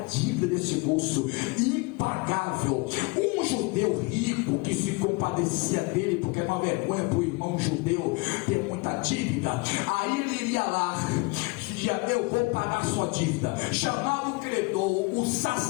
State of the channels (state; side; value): quieter; right; 27.7 dB